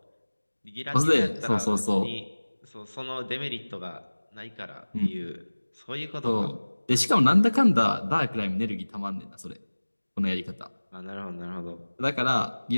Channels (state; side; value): inverted; both; correlation -1.00